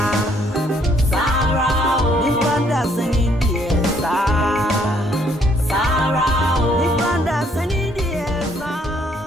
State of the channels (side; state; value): both; normal; correlation 0.66